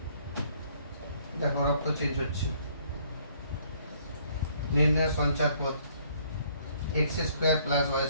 দেখো রক্ত চেঞ্জ হচ্ছে, নির্ণয় সঞ্চার পথ x square plus y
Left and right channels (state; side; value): inverted; both; correlation -0.63